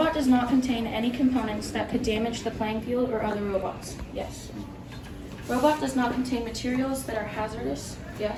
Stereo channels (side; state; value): both; identical; correlation 1.00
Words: does not contain any components that could damage the playing field or other robots. Yes. Robot does not contain materials that are hazardous.